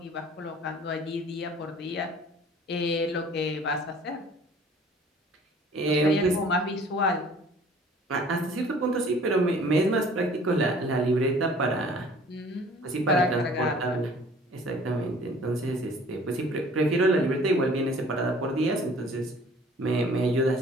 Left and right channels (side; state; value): both; normal; correlation 0.51